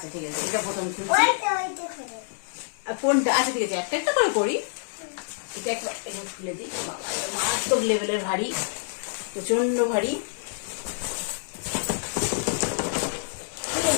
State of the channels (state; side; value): silent; right; digital silence